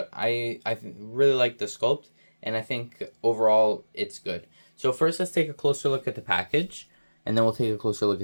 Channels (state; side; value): inverted; both; correlation -1.00